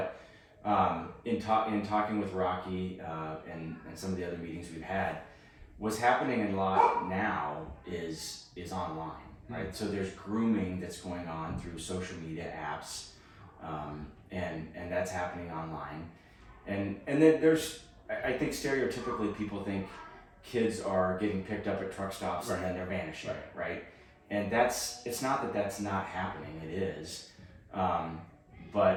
in talking with Rocky and some of the other meetings we've had, what's happening a lot now is online, right? So there's grooming that's going on through social media apps, and that's happening online, and then there's, I think stereotypically people think kids are getting picked up at truck stops and then they're vanishing, right? And it's not that that's not happening, it is,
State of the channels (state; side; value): identical; both; correlation 1.00